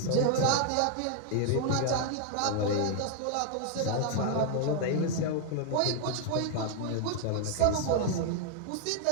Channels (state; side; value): different; both; correlation 0.00